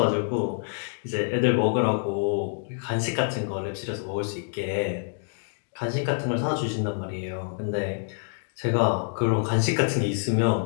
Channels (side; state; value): right; silent; digital silence